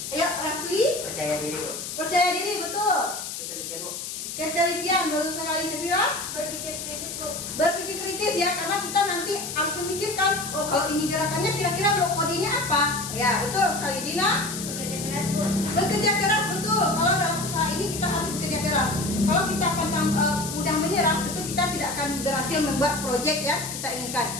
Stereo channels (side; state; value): left; noise; hiss, 7 dB below the sound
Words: Ya, Rafli? Percaya diri, Bu. Percaya diri, betul. Ketelitian, Bu. Ketelitian, baru sekali Sefira. Berpikir kritis, Bu. Berpikir kritis ya, karena kita nanti harus memikirkan, oh kalau ini gerakannya kira-kira blok kodenya apa? Ya, betul sekali. Dina? Bekerja keras, Bu. Bekerja keras, betul. Kalau dalam usaha ini kita harus bekerja keras. Kalau kita mudah menyerah, tentu kita tidak akan berhasil membuat proyek yang kita inginkan.